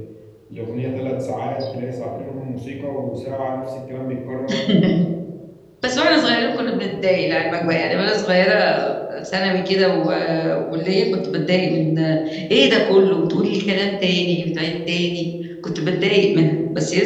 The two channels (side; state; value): both; identical; correlation 1.00